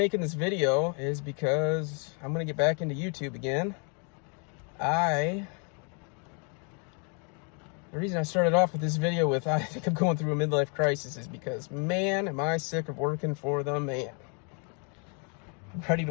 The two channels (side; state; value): right; quieter; 37.9 dB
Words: this video is because I'm gonna get back into YouTube again. The reason I started off with this video with I think I'm going through a midlife crisis is because, man, am I sick of working for the man. I'm ready